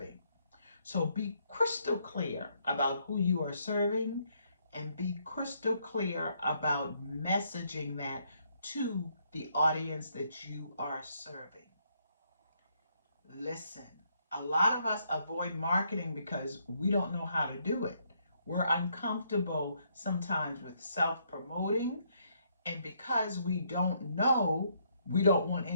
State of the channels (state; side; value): inverted; both; correlation -0.72